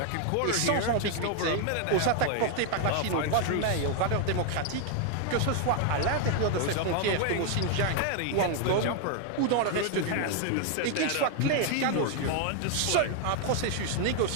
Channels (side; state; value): both; different; correlation 0.00